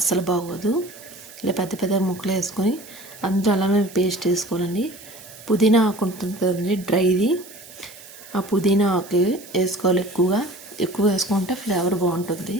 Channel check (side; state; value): right; noise; hiss, 19 dB below the sound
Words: బాగోదు. ఇలా పెద్ద పెద్ద ముక్కలు వేసుకొని అందులో అలానే పేస్ట్ వేసుకోవాలండి. పుదీనా ఆకు ఉంటుంది కదండి, డ్రైది. ఆ పుదీనా ఆకు వేసుకోవాలి. ఎక్కువ వేసుకుంటే ఫ్లేవర్ బాగుంటుంది.